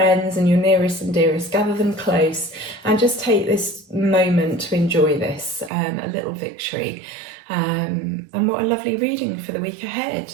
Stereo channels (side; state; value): left; drops out; at 5.7 s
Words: and your nearest and dearest, gather them close and just take this moment to enjoy this, a little victory. And what a lovely reading for the week ahead.